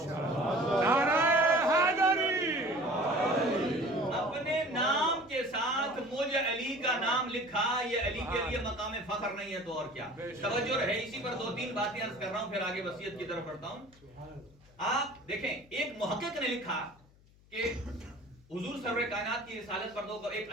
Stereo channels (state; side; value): noise; left; hum, 28 dB below the sound